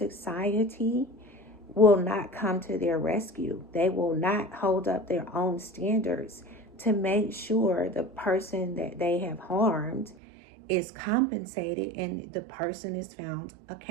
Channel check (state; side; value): drops out; left; at 10.2 s